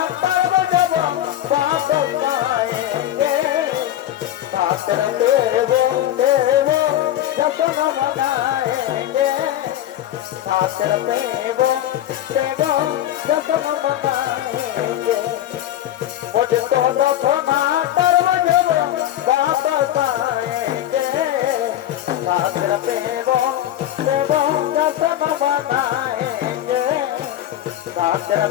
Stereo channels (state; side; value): quieter; right; 12.4 dB